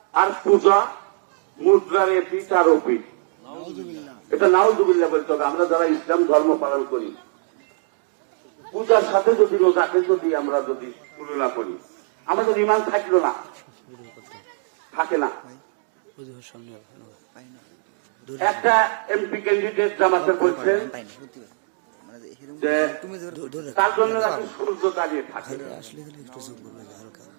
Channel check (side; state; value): left; silent; 64 dB below the other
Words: আর পূজা মুদ্রার এপিঠ আর ওপিঠ। এটা নাউজুবিল্লাহ বলতে হবে। আমরা যারা ইসলাম ধর্ম পালন করি, পূজার সাথে যদি রোজাকে যদি আমরা যদি তুলনা করি, আমাদের ইমান থাকলো না, থাকে না। একটা এমপি ক্যান্ডিডেট জামাতে বলছেন যে তার জন্য নাকি সূর্য দাঁড়িয়ে থাকে,